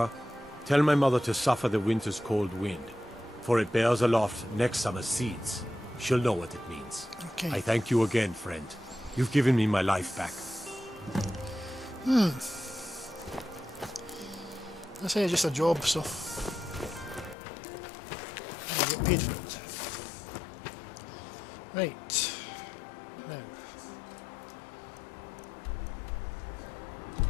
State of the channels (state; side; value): drops out; right; at 17.4 s